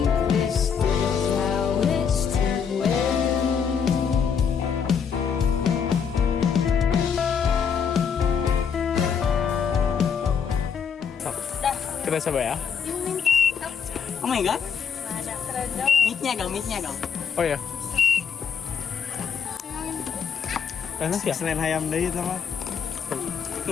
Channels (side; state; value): right; quieter; 6.9 dB